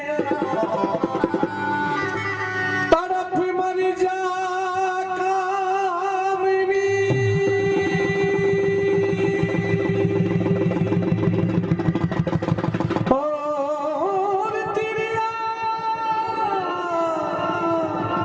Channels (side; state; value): both; identical; correlation 1.00